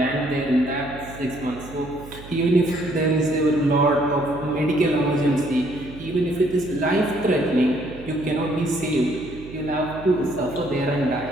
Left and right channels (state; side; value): noise; right; hum, 16 dB below the sound